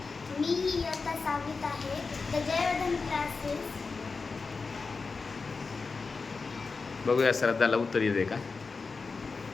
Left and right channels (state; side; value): quieter; right; 4.4 dB